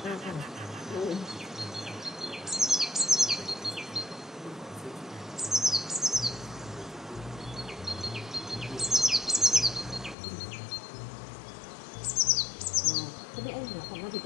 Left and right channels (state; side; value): drops out; right; at 10.2 s